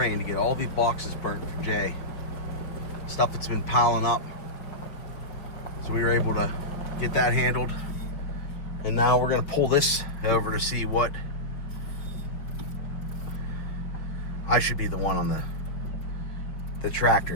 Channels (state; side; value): late; right; 5.7 ms